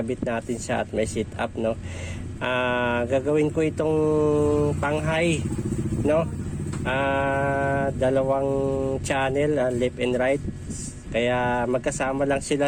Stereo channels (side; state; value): both; identical; correlation 1.00